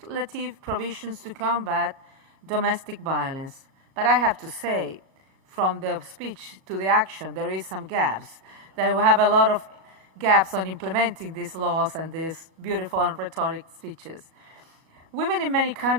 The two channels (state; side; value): late; left; 37 ms